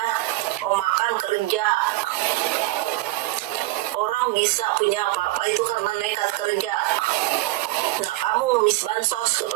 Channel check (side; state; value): left; quieter; 18.8 dB